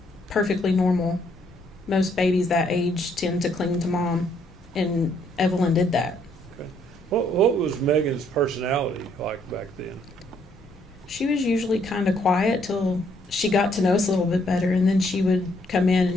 perfectly normal. Most babies that age tend to cling to mom, and Evelyn did that. Okay. What was Megan's personality like back then? She was usually kind of quiet till she got to know us a little bit better, and then she would come in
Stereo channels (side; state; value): both; normal; correlation 0.69